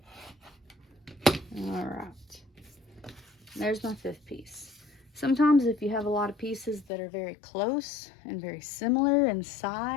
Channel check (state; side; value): drops out; right; at 6.9 s